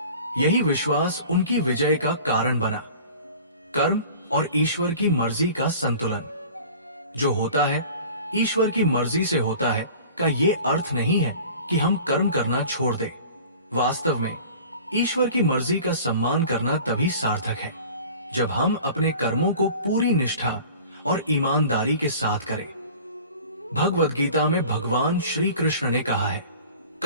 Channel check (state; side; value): inverted; both; correlation -0.43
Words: यही विश्वास उनकी विजय का कारण बना। कर्म और ईश्वर की मर्जी का संतुलन। जो होता है ईश्वर की मर्जी से होता है का ये अर्थ नहीं है कि हम कर्म करना छोड़ दें। वास्तव में ईश्वर की मर्जी का सम्मान करना तभी सार्थक है जब हम अपने कर्मों को पूरी निष्ठा और ईमानदारी के साथ करें। भगवद गीता में भगवान श्री कृष्ण ने कहा है,